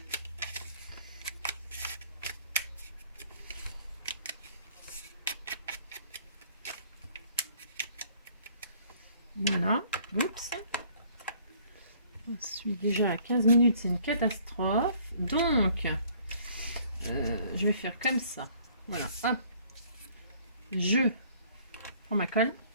Voilà. Oups. Je suis déjà à 15 minutes, c'est une catastrophe. Donc, je vais faire comme ça. Voilà. Hop. Je prends ma colle.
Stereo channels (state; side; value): inverted; both; correlation -0.57